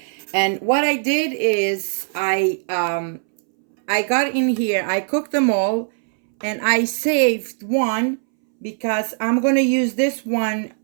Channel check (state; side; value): silent; left; 65 dB below the other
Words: And what I did is I got in here, I cooked them all, and I saved one because I'm going to use this one